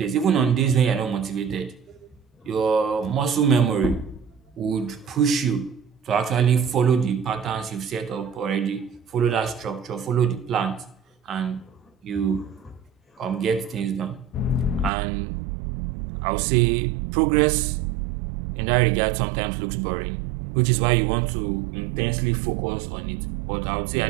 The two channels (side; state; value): left; drops out; at 14.9 s